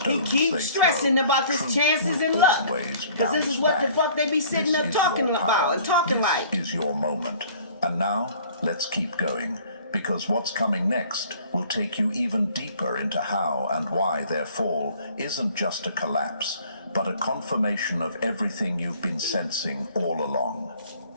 He they keeps stressing throw, about his truth chances will and luck. always Because this is bounce what the back. fuck they be sitting This up is talking your about power. and talking This like. is your moment. And now, let's keep going. Because what's coming next will take you even deeper into how and why their fall isn't just a collapse, but a confirmation of everything you've been sensing all along.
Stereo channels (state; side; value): inverted; both; correlation -0.53